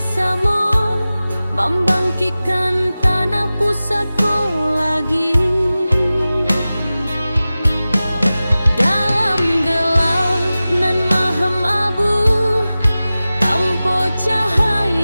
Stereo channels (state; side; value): inverted; both; correlation -0.96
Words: membangkitkan tanah pusatku lagi. Dalam gelap nan mahem abu, tanpa